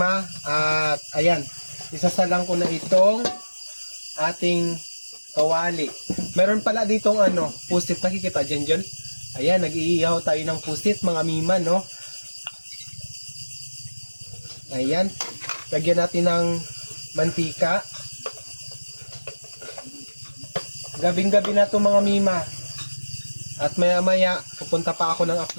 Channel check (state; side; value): inverted; both; correlation -1.00